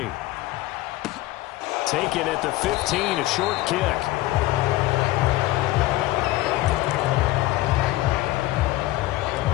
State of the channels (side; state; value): right; quieter; 17.3 dB